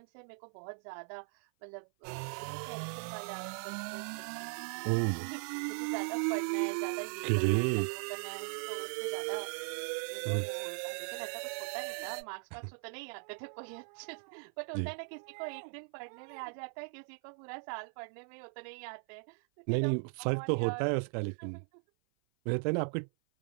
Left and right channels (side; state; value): left; silent; 52 dB below the other